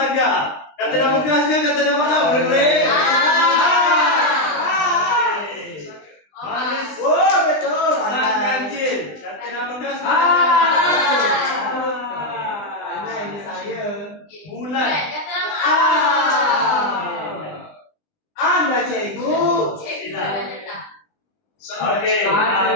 Kata nama keras ke kata nama awal? Boleh? Manis. Oh, betul. Sang ganjil. Kata nama keras ke? Anak ini saya. Bulan. Kata nama Ah. Anda cikgu. Cikgu dah letak. Okey.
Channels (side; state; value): right; late; 20 ms